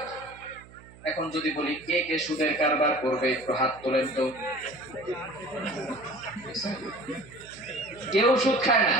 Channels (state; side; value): noise; right; hum, 22 dB below the sound